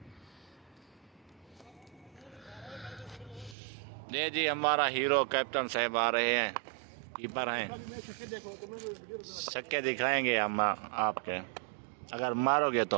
ये जी हमारा हीरो कैप्टन साहब आ रहे हैं, कीपर हैं। छक्के दिखाएंगे हम आपके, अगर मारोगे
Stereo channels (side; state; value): left; drops out; at 3.6 s